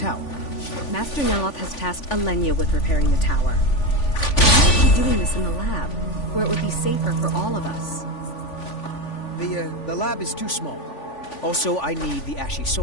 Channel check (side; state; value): right; late; 3.5 ms